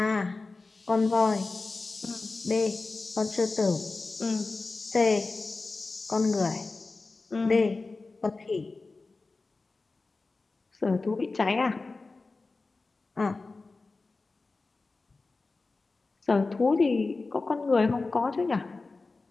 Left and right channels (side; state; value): right; quieter; 3.7 dB